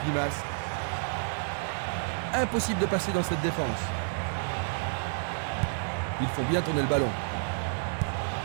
Impossible de passer dans cette défense. Ils font bien tourner le ballon.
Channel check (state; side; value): silent; left; digital silence